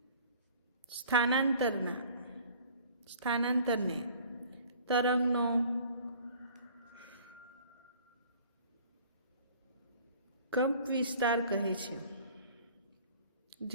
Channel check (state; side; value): inverted; both; correlation -0.50